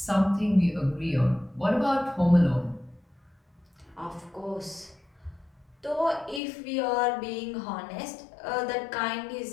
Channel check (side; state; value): right; drops out; at 6.4 s